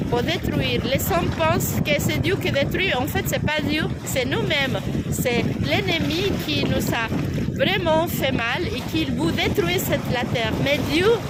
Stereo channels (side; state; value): both; identical; correlation 1.00